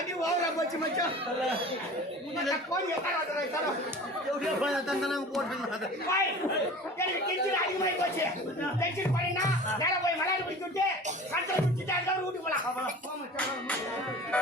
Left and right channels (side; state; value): both; normal; correlation 0.40